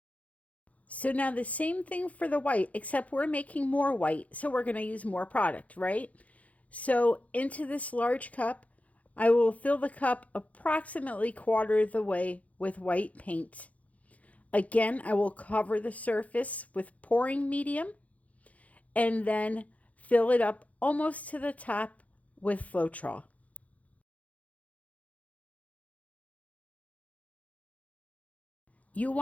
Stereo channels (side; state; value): right; late; 0.068 ms